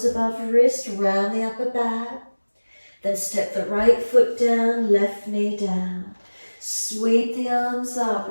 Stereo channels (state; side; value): inverted; both; correlation -1.00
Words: above wrist, round the upper back. Then step the right foot down, left knee down. Sweep the arms up,